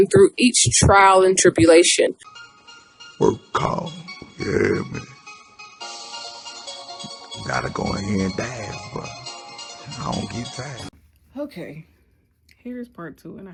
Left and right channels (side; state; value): both; identical; correlation 1.00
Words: through each trial and tribulation. Work call. Yeah, man. Gotta go in here and dance, but I don't get tired. Okay, here's part two, and I